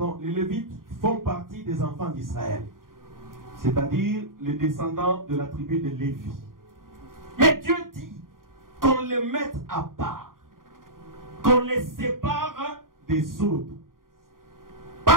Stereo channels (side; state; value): left; late; 0.91 ms